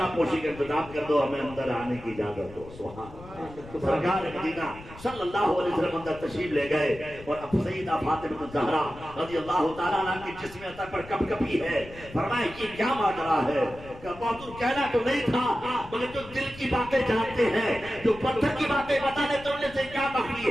پوشی کا انتظام کر دو ہمیں اندر آنے کی اجازت دو. سبحان اللہ. سرکار مدینہ صلی اللہ علیہ وسلم اندر تشریف لے گئے اور اب سیدہ فاطمہ الزہرا رضی اللہ تعالیٰ عنہ کی جسم عطا پر کپ کپی ہے. فرمایا یہ کیا ماجرا ہے کہ بہادر کہنا تو نہیں تھا مگر جو دل کی باتیں جانتے ہیں جو پتھر کی باتیں بتانے تو انہیں سے کیا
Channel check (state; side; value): noise; left; rumble, 18 dB below the sound